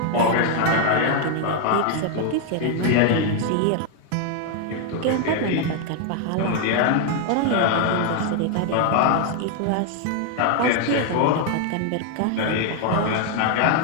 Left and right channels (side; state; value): both; different; correlation 0.00